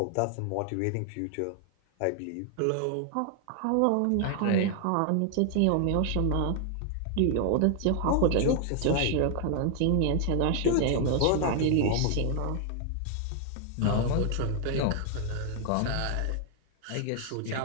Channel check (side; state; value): both; different; correlation 0.00